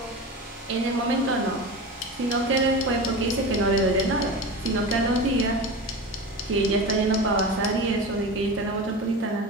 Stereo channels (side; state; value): both; normal; correlation 0.28